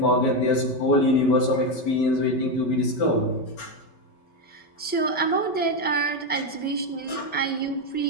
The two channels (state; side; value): late; right; 5.2 ms